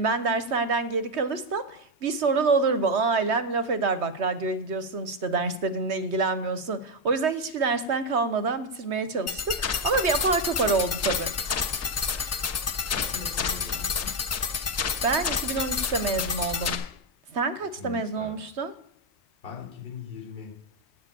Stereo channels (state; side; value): normal; both; correlation 0.05